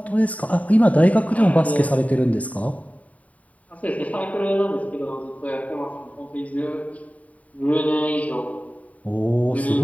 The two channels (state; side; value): late; right; 0.069 ms